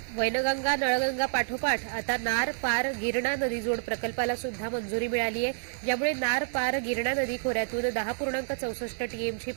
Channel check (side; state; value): left; silent; digital silence